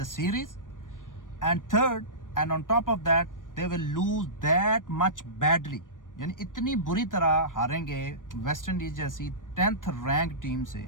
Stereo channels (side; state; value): right; late; 0.88 ms